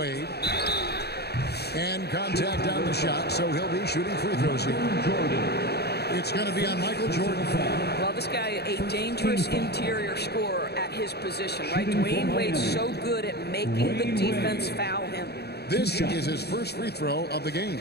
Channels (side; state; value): right; late; 0.47 ms